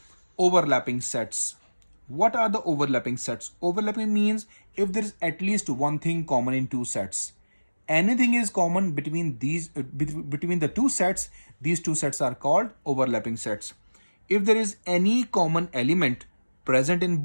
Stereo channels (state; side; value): inverted; both; correlation -1.00